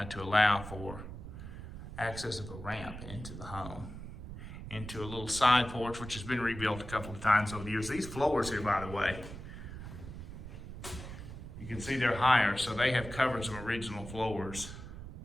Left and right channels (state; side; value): noise; right; rumble, 10 dB below the sound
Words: to allow for access of a ramp into the home, into a little side porch, which has been rebuilt a couple of times over the years. These floors here, by the way, you You can see they're higher, so they have covered some original floors